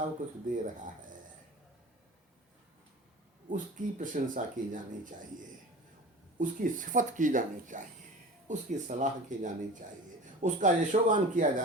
कुछ दे रहा है, उसकी प्रशंसा की जानी चाहिए, उसकी सिफत की जानी चाहिए, उसकी सलाह की जानी चाहिए, उसका यशोगान किया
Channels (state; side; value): normal; both; correlation 0.37